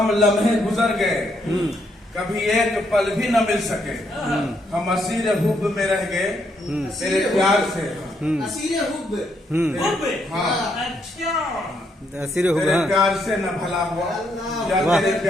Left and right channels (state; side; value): normal; both; correlation 0.75